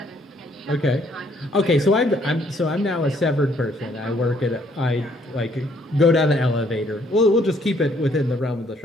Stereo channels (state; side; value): normal; both; correlation 0.66